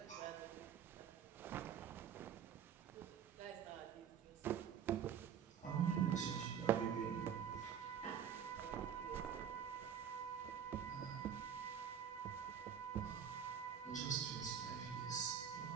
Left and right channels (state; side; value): quieter; left; 8.4 dB